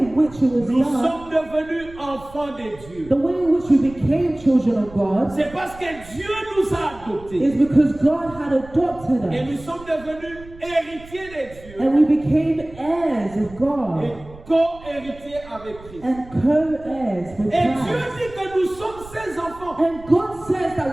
which it was nous done, sommes devenus enfants de Dieu. the way in which we became children of God, C'est parce que Dieu nous a adoptés is because God had adopted et us nous sommes devenus héritiers de Dieu and we became heirs of et God co-héritiers avec Christ. and co-heirs with Et Dieu Christ. dit que nous sommes ses enfants. And God says that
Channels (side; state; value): right; noise; rumble, 19 dB below the sound